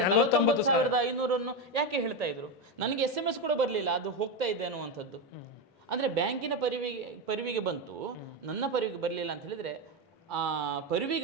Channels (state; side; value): normal; both; correlation 0.12